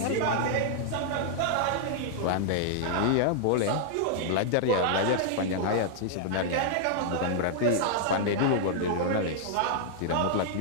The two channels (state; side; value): different; both; correlation -0.01